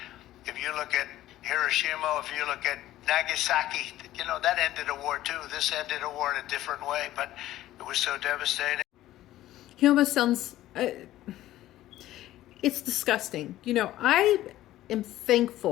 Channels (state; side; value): quieter; right; 14.5 dB